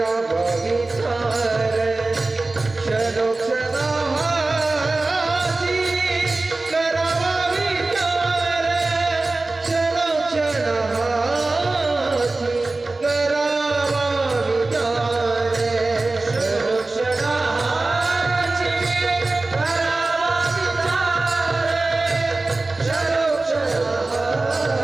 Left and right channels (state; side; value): quieter; left; 3.3 dB